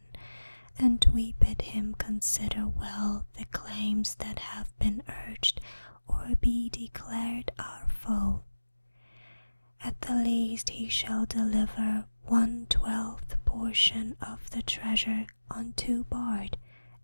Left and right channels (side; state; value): both; inverted; correlation -1.00